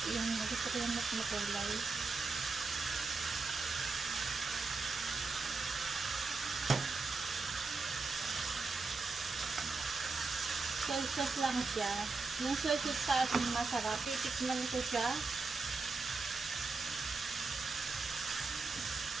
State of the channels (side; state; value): left; quieter; 4.1 dB